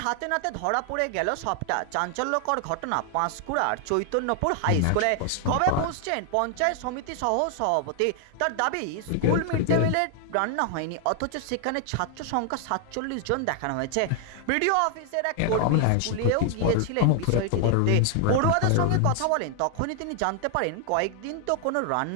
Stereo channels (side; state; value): both; different; correlation 0.00